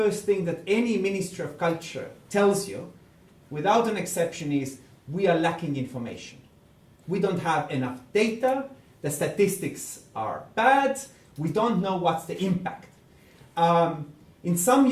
thing that any Ministry of Culture tells you, without an exception, is we are lacking information. We don't have enough data, the statistics are bad, we don't know what's the impact. In some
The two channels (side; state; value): both; identical; correlation 1.00